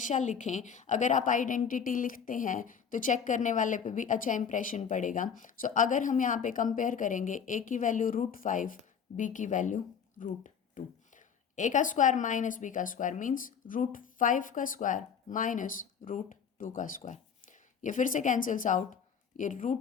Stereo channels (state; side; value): quieter; right; 7.1 dB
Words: लिखें। अगर आप आइडेंटिटी लिखते हैं तो चेक करने वाले पे भी अच्छा इंप्रेशन पड़ेगा। सो अगर हम यहाँ पे कंपेयर करेंगे, ए की वैल्यू √5, बी की वैल्यू √2, ए का स्क्वायर माइनस बी का स्क्वायर मीन्स √5 का स्क्वायर माइनस √2 का स्क्वायर, ये फिर से कैंसिल्स आउट, ये